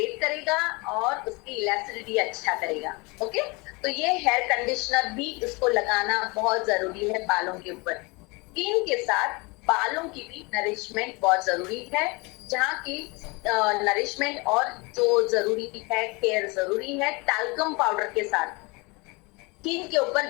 करेगा और उसकी इलास्टिसिटी अच्छा करेगा। ओके, तो ये हेयर कंडीशनर भी इसको लगाना बहुत जरूरी है बालों के ऊपर। स्किन के साथ बालों की भी नरिशमेंट बहुत जरूरी है, जहाँ की नरिशमेंट और जो जरूरी है, केयर जरूरी है। टैल्कम पाउडर के साथ स्किन के ऊपर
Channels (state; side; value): quieter; right; 27.0 dB